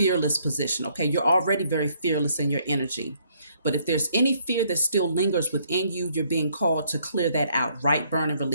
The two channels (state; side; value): inverted; both; correlation -0.67